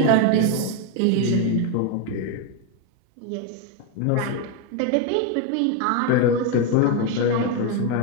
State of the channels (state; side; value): different; both; correlation 0.02